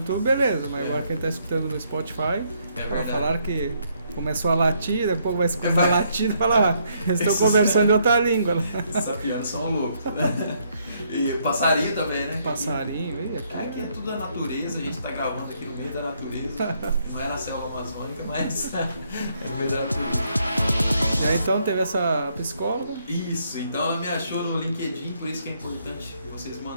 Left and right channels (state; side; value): inverted; both; correlation -0.72